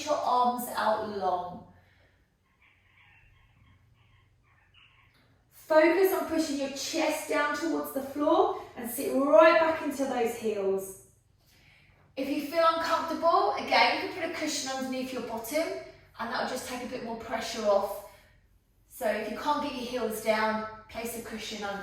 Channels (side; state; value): both; identical; correlation 1.00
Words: your arms out long. Focus on pushing your chest down towards the floor and sit right back into those heels. If you feel uncomfortable, again, you can put a cushion underneath your bottom and that'll just take a bit more pressure off. So if you can't get your heels down, place a cushion